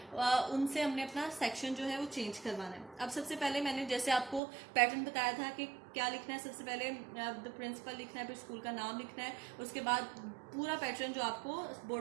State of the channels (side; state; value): left; drops out; at 4.4 s